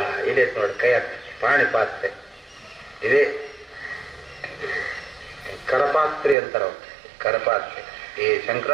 ಇದೆ ನೋಡಿ ಕೈ ಪಾಣಿ ಪಾತ್ರೆ ಇದೆ. ಕರಪಾತ್ರೆ ಅಂತಾರ, ಕರಪಾತ್ರೆ. ಈ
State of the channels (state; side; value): drops out; left; at 6.4 s